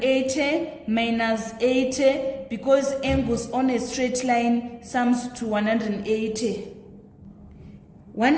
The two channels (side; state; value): both; identical; correlation 1.00